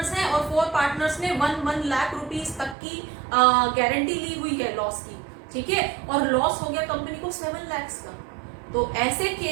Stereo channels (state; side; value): drops out; left; at 2.8 s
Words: हैं और 4 पार्टनर्स ने 1 लाख रुपीस तक की गारंटी ली हुई है लॉस की, ठीक है, और लॉस हो गया कंपनी को 7 लाख का, तो ऐसे